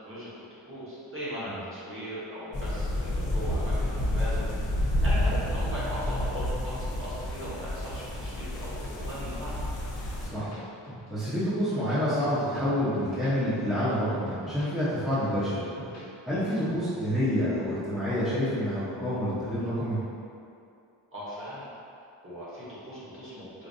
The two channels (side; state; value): both; normal; correlation 0.59